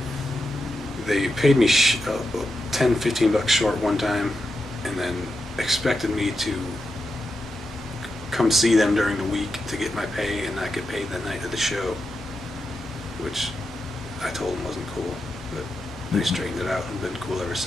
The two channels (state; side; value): normal; both; correlation 0.87